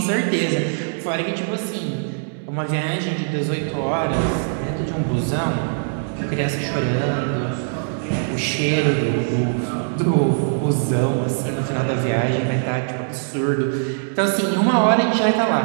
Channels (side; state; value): left; silent; digital silence